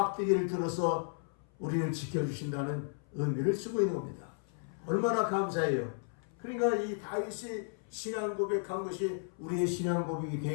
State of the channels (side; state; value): right; silent; 55 dB below the other